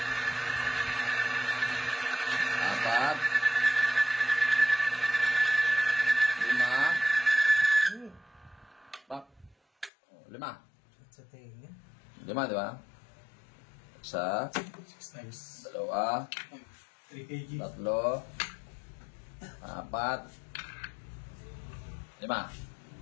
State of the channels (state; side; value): drops out; right; at 9.9 s